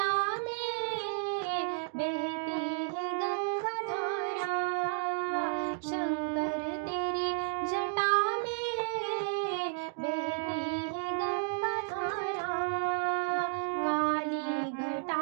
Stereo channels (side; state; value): left; silent; 56 dB below the other